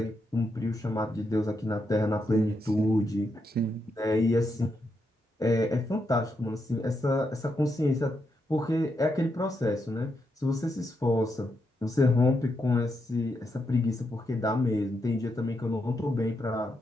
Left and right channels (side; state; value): both; normal; correlation 0.82